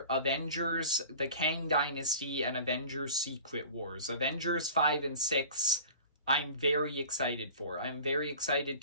Avengers, the Kang Dynasty, and Avengers Secret Wars. Avengers 5 and 6, I'm very excited for. I'm very excited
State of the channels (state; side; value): inverted; both; correlation -0.40